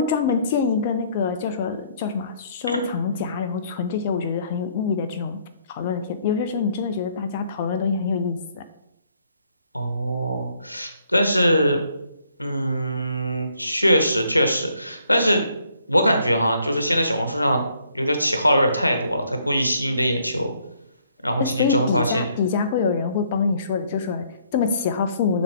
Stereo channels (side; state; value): both; inverted; correlation -0.66